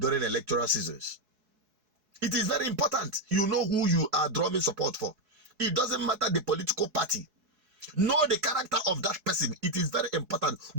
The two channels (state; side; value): late; left; 4.7 ms